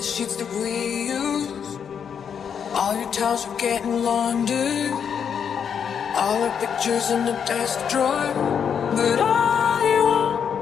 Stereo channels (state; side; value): quieter; right; 7.5 dB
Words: sheets that we used. All your towels are getting laundered, all the pictures in the desk drawer. But I